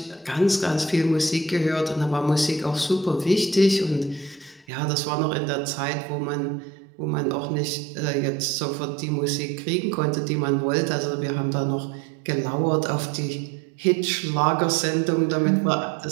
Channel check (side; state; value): left; drops out; at 4.7 s